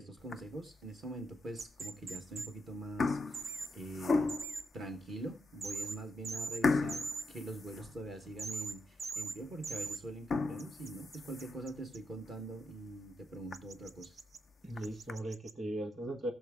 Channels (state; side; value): normal; both; correlation 0.83